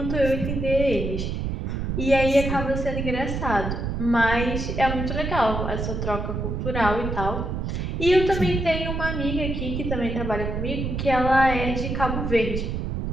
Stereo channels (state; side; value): noise; right; rumble, 3 dB below the sound